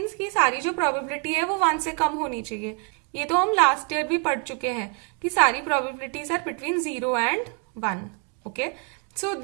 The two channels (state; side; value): quieter; left; 35.3 dB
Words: कि सारी जो प्रोबेबिलिटी है वो 1 से कम होनी चाहिए। ये तो हम लास्ट ईयर भी पढ़ चुके हैं कि सारी probabilities are between 0 and 1। Okay, so